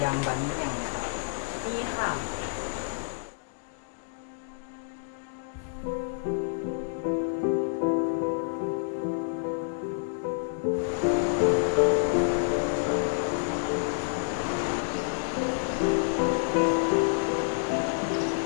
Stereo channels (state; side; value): silent; right; digital silence